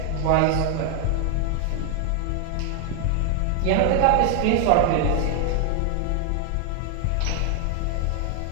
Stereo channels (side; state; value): both; different; correlation 0.00